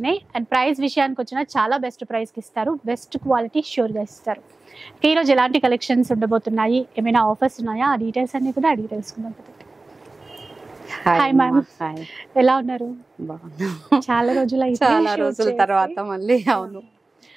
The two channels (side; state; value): left; quieter; 3.3 dB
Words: అండ్ ప్రైస్ విషయానికి వచ్చినా చాలా బెస్ట్ ప్రైస్కి ఇస్తారు, బెస్ట్ క్వాలిటీ ష్యూర్గా ఇస్తారు. ఈరోజు ఎలాంటి కలెక్షన్స్ ఉండబోతున్నాయి, ఏమైనా ఆఫర్స్ ఉన్నాయా, ఆ డీటెయిల్స్ అన్ని కూడా అడిగి తెలుసుకుందాం. హాయ్ మ్యామ్, ఎలా ఉన్నారు? చాలా రోజుల తర్వాత మళ్ళీ. అవును,